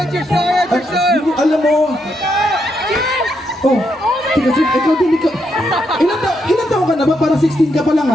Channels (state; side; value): normal; both; correlation 0.79